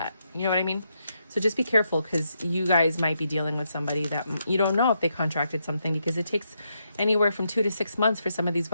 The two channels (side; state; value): both; inverted; correlation -0.80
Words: You know what I mean? So just be careful, because you guys might be dealing with somebody that you don't know if they contracted something, because it takes anywhere from 2 to 6 months for some of these